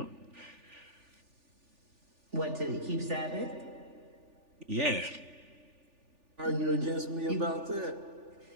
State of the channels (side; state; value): left; late; 3.4 ms